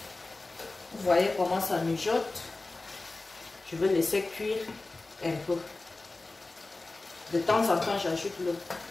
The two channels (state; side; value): quieter; right; 3.2 dB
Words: Vous voyez comment ça mijote. Je vais laisser cuire un peu. De temps en temps, j'ajoute l'eau.